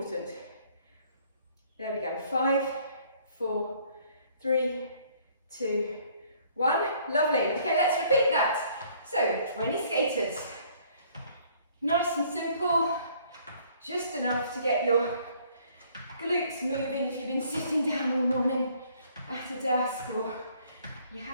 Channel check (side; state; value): both; inverted; correlation -0.60